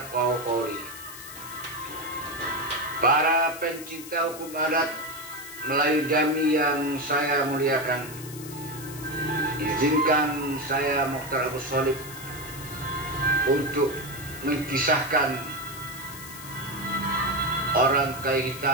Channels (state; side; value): noise; left; hiss, 14 dB below the sound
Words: qawli. Para pencinta hukum adat Melayu Jami yang saya muliakan, izinkan saya Mokhtar Abu Sholib untuk mengisahkan orang kai